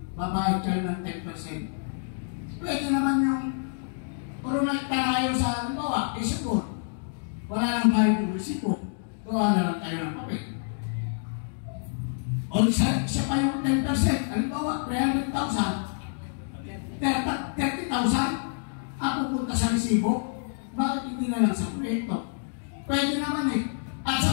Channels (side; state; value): right; silent; digital silence